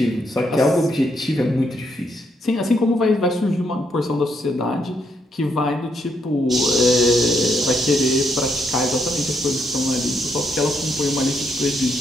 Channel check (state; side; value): normal; both; correlation 0.76